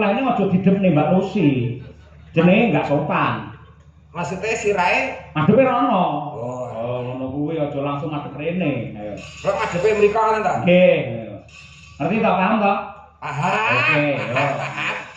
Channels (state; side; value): identical; both; correlation 1.00